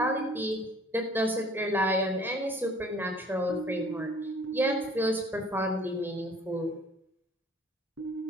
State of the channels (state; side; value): normal; both; correlation 0.53